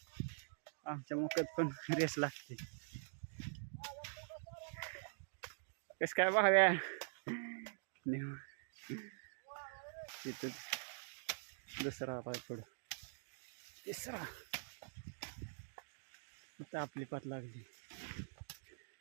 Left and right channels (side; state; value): left; silent; digital silence